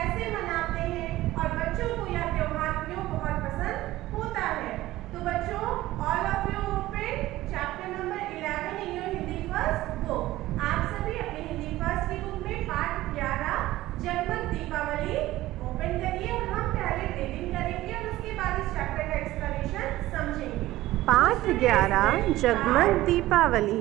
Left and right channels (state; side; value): quieter; left; 16.5 dB